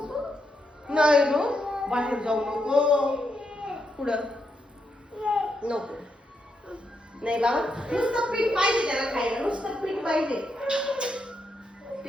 नाही नो बाहेर जाऊ नको पुढं नको नाही बाबा नुसतं पीठ पाहिजे त्याला खायला नुसतं पीठ पाहिजे.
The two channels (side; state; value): both; normal; correlation 0.81